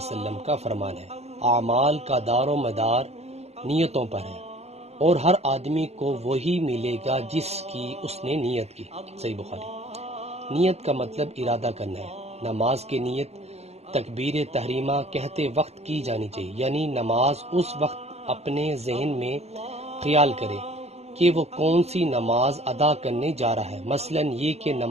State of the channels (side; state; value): left; late; 0.31 ms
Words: کا فرمان ہے، اعمال کا دار و مدار نیتوں پر ہے، اور ہر آدمی کو وہی ملے گا جس کی اس نے نیت کی۔ صحیح بخاری۔ نیت کا مطلب ارادہ کرنا ہے۔ نماز کی نیت تکبیر تحریمہ کہتے وقت کی جانی چاہیے، یعنی نماز اس وقت اپنے ذہن میں خیال کرے کہ وہ کون سی نماز ادا کرنے جا رہا ہے، مثلا یہ کہ